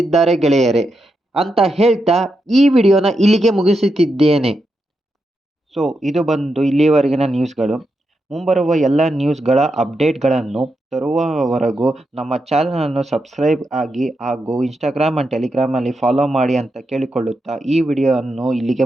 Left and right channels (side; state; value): both; normal; correlation 0.85